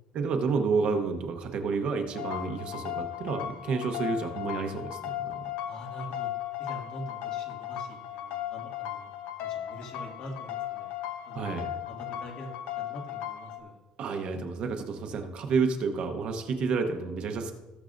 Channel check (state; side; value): normal; both; correlation 0.57